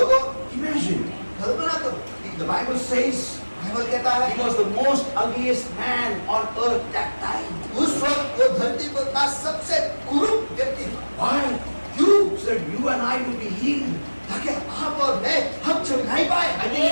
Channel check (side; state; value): both; inverted; correlation -1.00